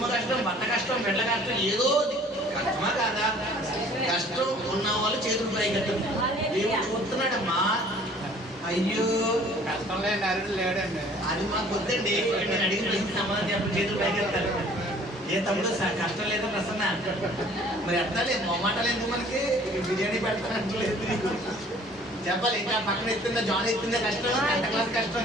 కష్టం, భర్త కష్టం, బిడ్డ కష్టం, ఏదో కష్టమా కాదా? కష్టం ఉన్న వాళ్ళు చేతులు పైకెత్తారు. దేవుడు చూస్తున్నాడమ్మా. అయ్యో కష్టం లేని అరుడు లేడండి. అది మాకు వద్దండి. నేను అడిగిన ప్రశ్న సమాధానం చెప్పి చేతులు పైకెత్తారు. ఏ తమ్ముడు కష్టం లేదా ప్రసన్న? మరి ఎత్తాలి, మొమ్మాటాలు ఎందుకు మనకి? బిర్యానీ పెడతానంటలేదు చెప్పాలి. ఇంకా పక్కన ఎత్తుందా జాన్ ఎత్తుందా కష్టం, 10th క్లాస్ కష్టం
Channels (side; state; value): both; normal; correlation 0.53